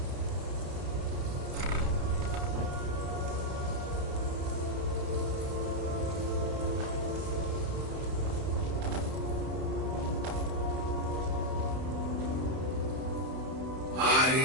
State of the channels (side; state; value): left; late; 31 ms